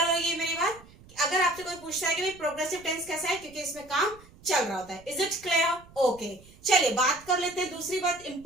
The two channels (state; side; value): noise; right; rumble, 23 dB below the sound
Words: हो गई मेरी बात? अगर आपसे कोई पूछता है कि भाई प्रोग्रेसिव टेंस कैसा है, क्योंकि इसमें काम चल रहा होता है। Is it clear? ओके, चलिए बात कर लेते हैं। दूसरी बात